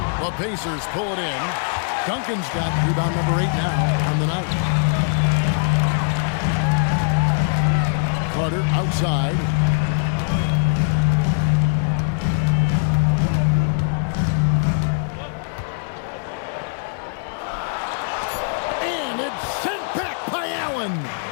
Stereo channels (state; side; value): silent; right; 65 dB below the other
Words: Pacers pull it in. Duncan's got rebound number 8 now on the night. Carter outside. And it's sent back by Allen.